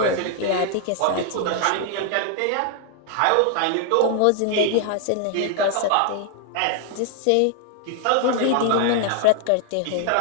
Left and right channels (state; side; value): different; both; correlation 0.00